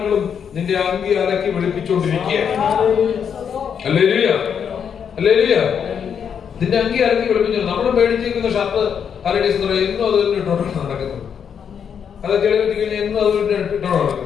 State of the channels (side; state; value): right; quieter; 7.5 dB